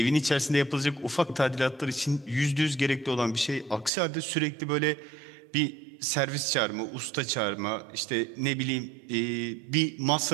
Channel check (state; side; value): drops out; left; at 3.9 s